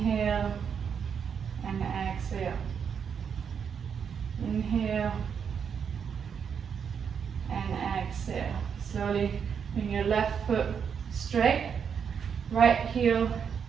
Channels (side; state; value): left; quieter; 7.1 dB